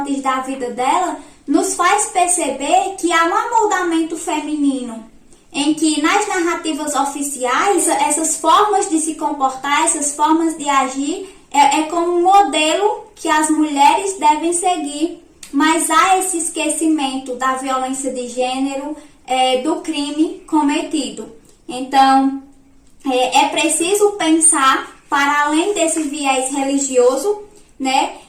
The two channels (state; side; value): identical; both; correlation 1.00